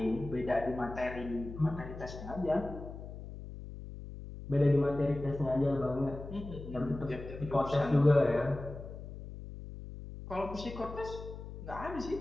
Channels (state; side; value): noise; left; hum, 11 dB below the sound